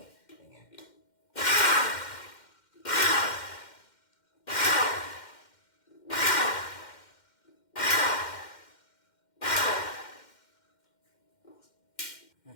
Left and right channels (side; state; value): right; late; 2.1 ms